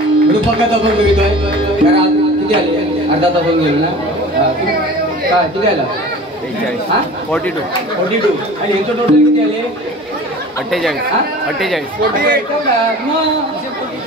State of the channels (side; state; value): both; normal; correlation 0.40